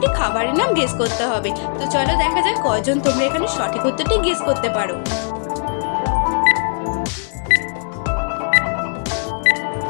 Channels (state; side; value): silent; right; digital silence